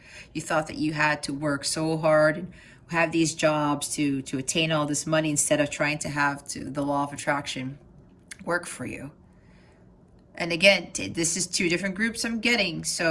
You thought that you had to work so hard and have these jobs to attain all this money instead of trying to have the law of attraction work for you. And again, this is two different groups I'm getting.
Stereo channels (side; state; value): both; identical; correlation 1.00